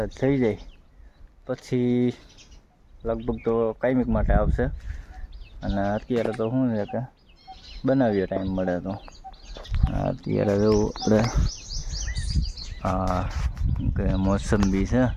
થઈ જાય પછી લગભગ તો કાયમિક માટે આવશે. અને અત્યારે તો શું છે કે બનાવીએ ટાઈમ મળે તો. અત્યારે જેવું આપણે કે મોસંબી છે,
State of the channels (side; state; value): both; identical; correlation 1.00